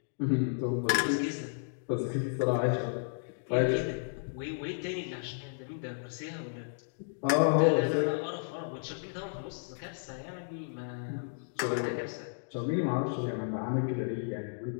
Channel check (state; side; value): silent; right; digital silence